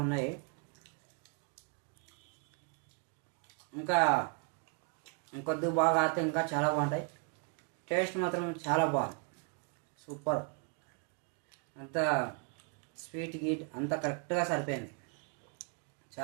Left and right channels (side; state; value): left; quieter; 38.5 dB